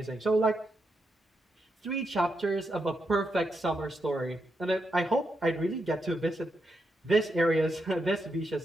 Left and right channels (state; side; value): normal; both; correlation 0.83